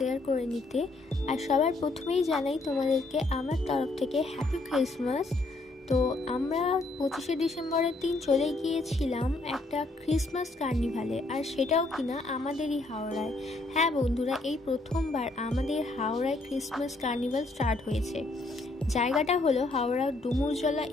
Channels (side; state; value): right; quieter; 3.0 dB